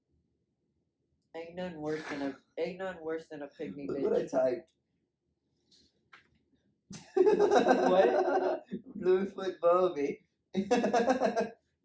Ain't nothing worse than a pygmy Look what I bitch. typed. What? Bluefoot Bobby.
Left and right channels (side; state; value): both; identical; correlation 1.00